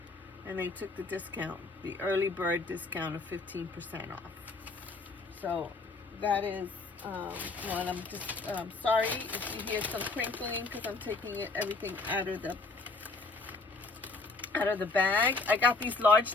and they took the discount, the early bird discount of 15% off. So that is one. I'm just sorry if you hear some crinkling because I'm taking everything out of the bag. I got these large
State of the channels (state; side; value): quieter; right; 3.7 dB